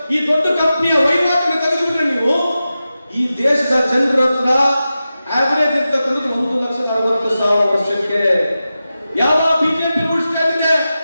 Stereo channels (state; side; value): inverted; both; correlation -0.93